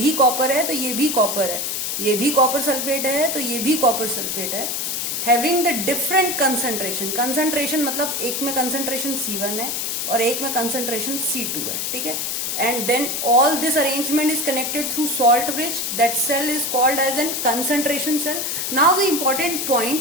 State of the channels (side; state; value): left; noise; hiss, 2 dB below the sound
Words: कॉपर है तो ये भी कॉपर है, ये भी कॉपर सल्फेट है तो ये भी कॉपर सल्फेट है, having the different concentration. Concentration मतलब एक में कंसंट्रेशन C1 है और एक में कंसंट्रेशन C2 है. ठीक है, and then all this arrangement is connected through salt bridge. That cell is called as a concentration cell. Now the important